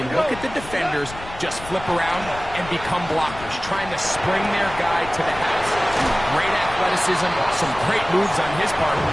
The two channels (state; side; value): noise; left; rumble, 14 dB below the sound